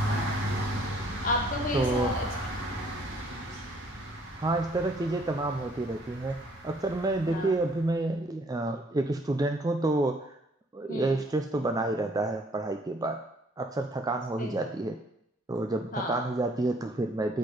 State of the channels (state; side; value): normal; both; correlation 0.61